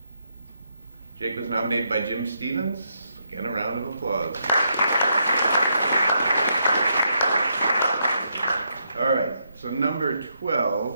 Jake was nominated by Jim Stevens. Again, a round of applause. All right, so number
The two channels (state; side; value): inverted; both; correlation -0.79